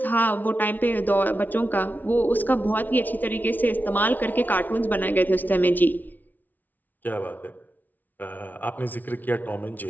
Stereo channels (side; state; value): right; late; 0.082 ms